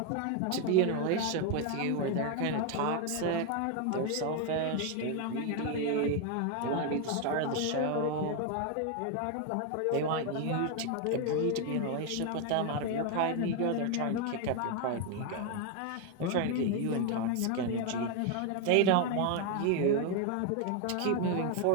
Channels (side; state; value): both; different; correlation 0.01